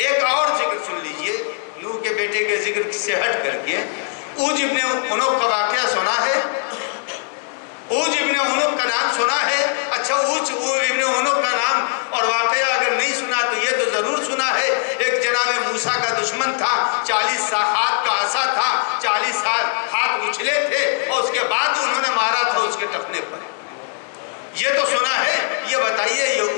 اور ذکر سن لیجئے نوح کے بیٹے کے ذکر سے ہٹ کر کے، اوج ابن عنق کا واقعہ سنا ہے؟ اوج ابن عنق کا نام سنا ہے؟ اچھا، اوج ابن عنق کا نام اور واقعہ اگر نہیں سنا تو یہ تو ضرور سنا ہے، ایک جناب موسیٰ کا دشمن تھا، 40 ہاتھ کا عصا تھا، 40 ہاتھ اچھلے تھے اور اس کے بعد انہوں نے مارا تھا اس کے ٹخنے پر۔ یہ تو سنا ہے، یہ بتائیے یہ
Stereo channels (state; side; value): silent; right; 60 dB below the other